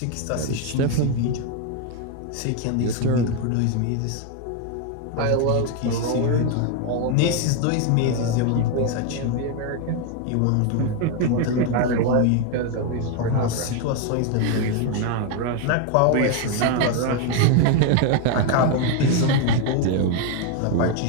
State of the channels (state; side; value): different; both; correlation 0.01